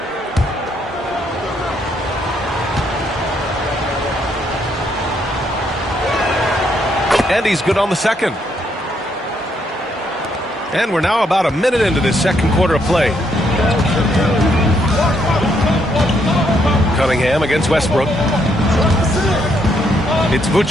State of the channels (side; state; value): both; normal; correlation 0.74